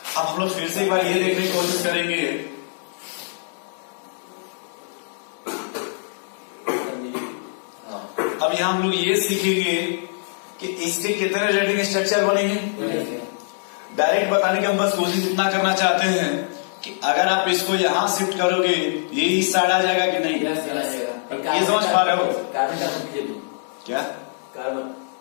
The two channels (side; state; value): right; silent; digital silence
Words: अब हम लोग फिर से एक बार ये देखने की कोशिश करेंगे। अब यहाँ हम लोग ये सीखेंगे कि इसके कितने रेटिंग स्ट्रक्चर बनेंगे। डायरेक्ट बताने की हम बस कोशिश इतना करना चाहते हैं कि अगर आप इसको यहाँ शिफ्ट करोगे ये इस साइड आ जाएगा कि नहीं। ये समझ पा रहे हो? क्या